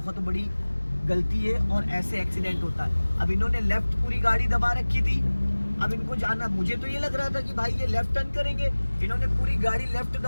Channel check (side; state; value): both; inverted; correlation -1.00